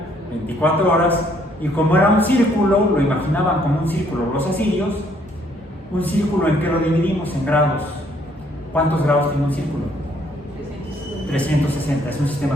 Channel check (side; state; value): both; normal; correlation 0.66